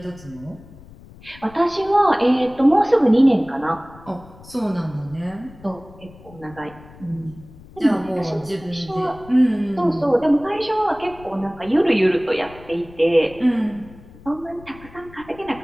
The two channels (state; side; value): noise; left; rumble, 21 dB below the sound